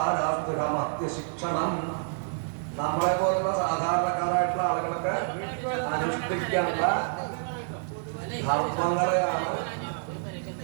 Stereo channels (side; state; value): left; silent; digital silence